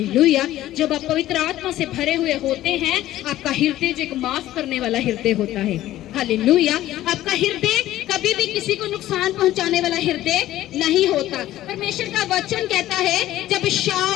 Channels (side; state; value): right; quieter; 14.3 dB